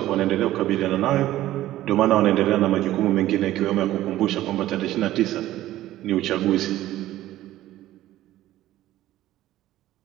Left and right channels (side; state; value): left; quieter; 14.6 dB